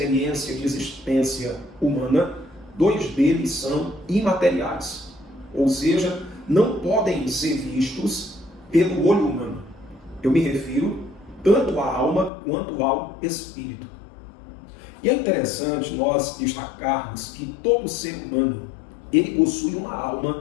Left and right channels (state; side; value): drops out; right; at 12.3 s